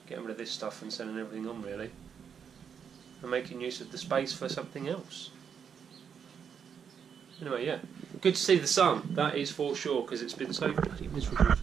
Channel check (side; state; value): left; quieter; 7.3 dB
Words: getting rid of this stuff and sending everything on really, and making use of the space for something else. Anyway, yeah, good to see the sun, that is for sure, because it's been so bloody miserable